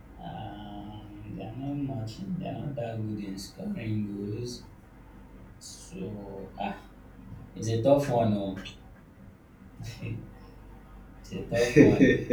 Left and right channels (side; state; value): both; identical; correlation 1.00